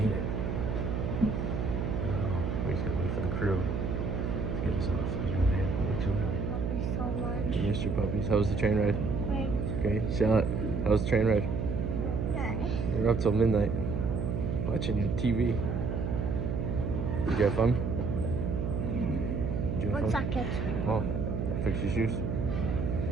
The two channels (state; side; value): noise; right; hum, 1 dB below the sound